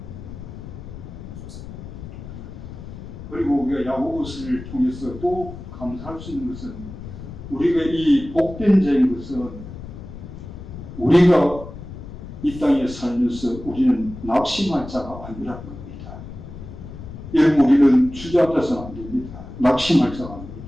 그리고 우리가 야고보서를 통해서 또 감사할 수 있는 것은 우리가 이 복된 자인 것은 우리가 이 땅에 살면서 우리는 낙심할 자가 아니라는 겁니다. 여러분 우리는 주저앉아서는 안 됩니다. 낙심할 자가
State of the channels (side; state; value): left; noise; rumble, 12 dB below the sound